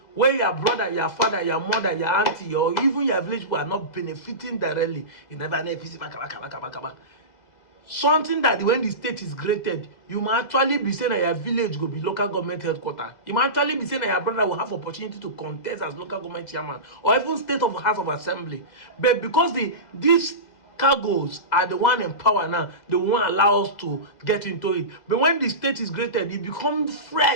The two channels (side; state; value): right; late; 2.0 ms